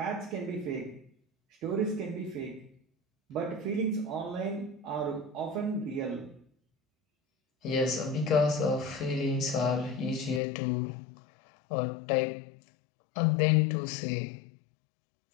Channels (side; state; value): right; drops out; at 10.4 s